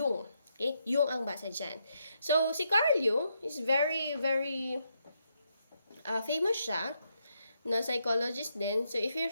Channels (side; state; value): both; inverted; correlation -0.80